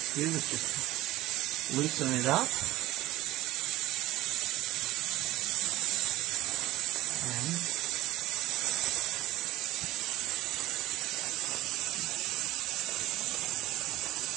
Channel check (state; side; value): quieter; left; 16.9 dB